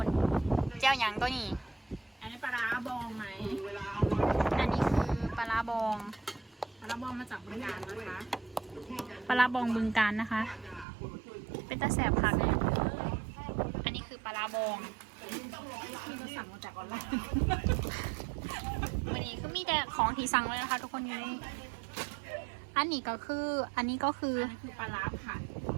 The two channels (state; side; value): drops out; left; at 10.9 s